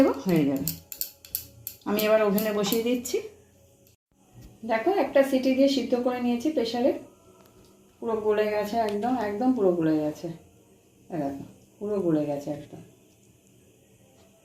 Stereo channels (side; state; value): both; identical; correlation 1.00